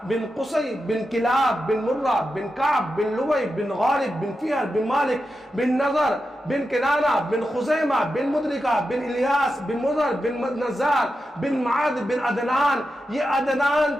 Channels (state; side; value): normal; both; correlation 0.89